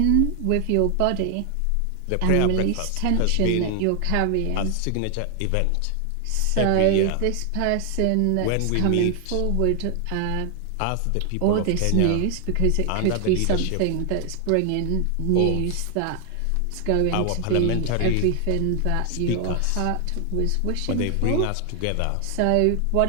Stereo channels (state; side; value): different; both; correlation 0.00